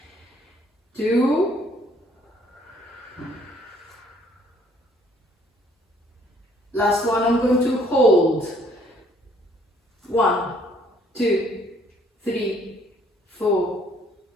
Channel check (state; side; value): normal; both; correlation 0.62